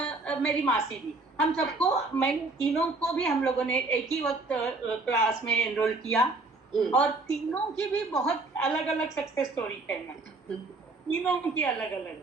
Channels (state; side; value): quieter; left; 3.3 dB